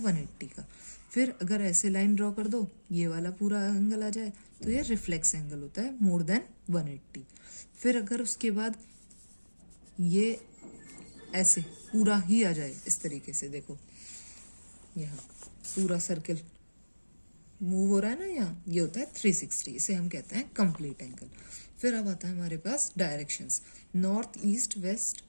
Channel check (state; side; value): inverted; both; correlation -1.00